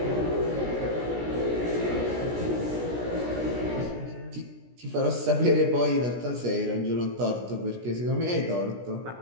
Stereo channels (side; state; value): left; late; 17 ms